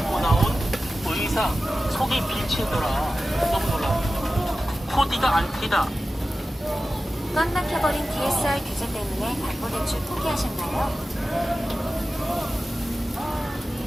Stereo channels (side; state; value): both; normal; correlation 0.94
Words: 나온 의상 속이 비치더라. 너무 놀라. 코디가 안 튀다. 꽉 막혀버린 DSR 규제 때문에 담보 대출 포기하셨나요?